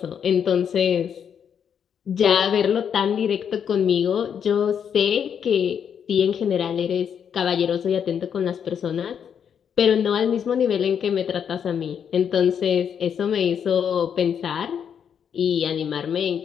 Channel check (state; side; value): quieter; right; 7.9 dB